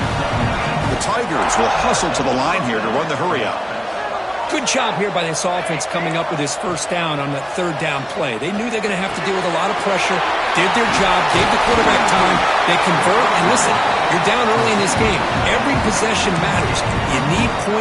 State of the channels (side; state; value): both; identical; correlation 1.00